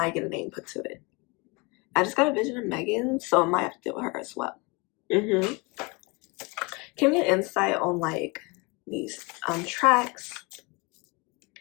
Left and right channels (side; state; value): right; quieter; 28.1 dB